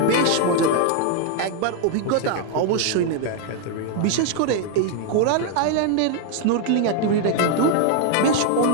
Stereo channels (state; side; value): different; both; correlation 0.00